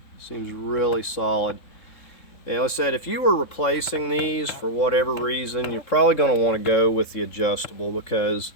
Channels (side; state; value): right; late; 3.7 ms